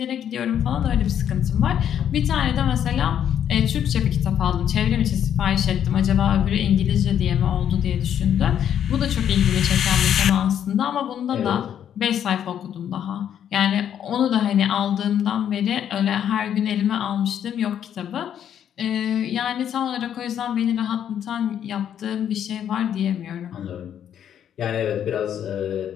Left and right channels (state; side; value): quieter; right; 9.5 dB